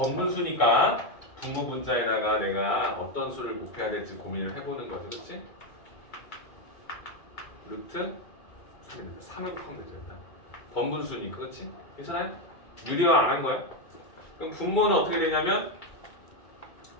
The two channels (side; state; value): right; late; 2.3 ms